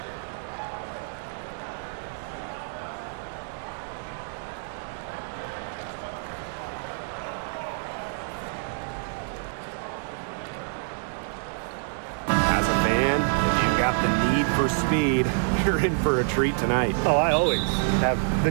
As a fan, if you've got the need for speed, you're in for a treat tonight. Oh, I always have the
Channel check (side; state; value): left; silent; digital silence